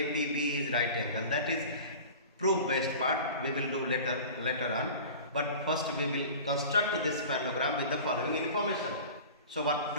is right angle. That is proof based part, we will do later on. But first we will construct this parallelogram with the following information. So what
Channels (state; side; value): inverted; both; correlation -0.38